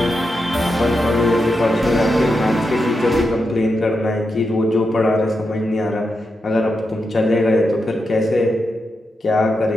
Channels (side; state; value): both; normal; correlation 0.86